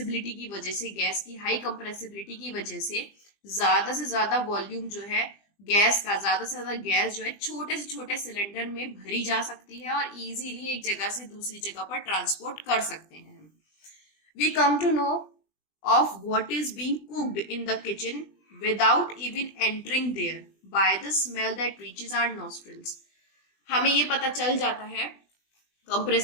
की वजह से, गैस की हाई कंप्रेसिबिलिटी की वजह से ज्यादा वॉल्यूम जो है गैस का, ज्यादा से ज्यादा गैस जो है छोटे से छोटे सिलेंडर में भरी जा सकती है और इजीली एक जगह से दूसरी जगह पर ट्रांसपोर्ट कर सकते हैं। We come to know of what is being cooked in the kitchen without even entering there by the smell that reaches our nostrils. हमें ये पता चल जाता है,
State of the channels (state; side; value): late; right; 20 ms